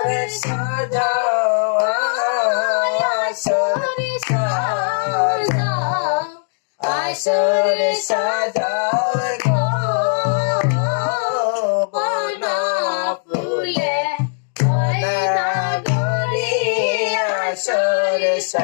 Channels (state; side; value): silent; right; digital silence